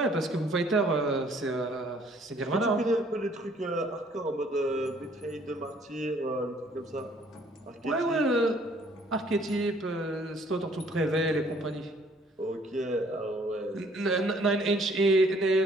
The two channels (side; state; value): both; normal; correlation 0.60